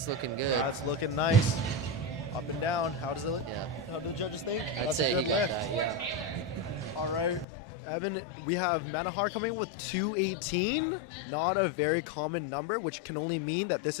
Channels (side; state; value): right; drops out; at 7.5 s